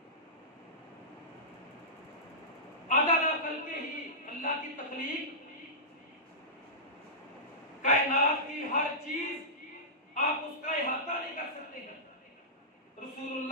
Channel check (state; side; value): normal; both; correlation -0.16